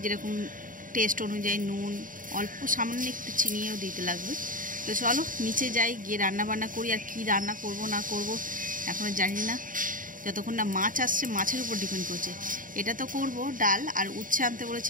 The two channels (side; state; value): left; late; 0.39 ms